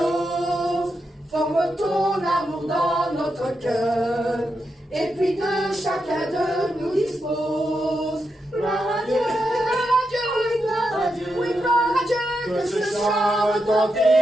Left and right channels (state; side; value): normal; both; correlation 0.85